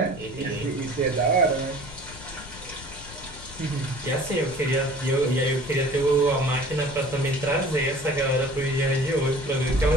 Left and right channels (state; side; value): noise; left; rumble, 16 dB below the sound